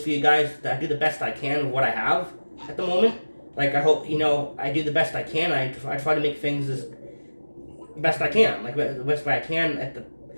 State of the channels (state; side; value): inverted; both; correlation -1.00